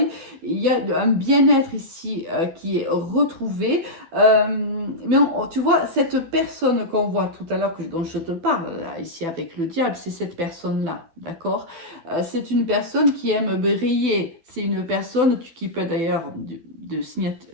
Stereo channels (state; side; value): late; left; 12 ms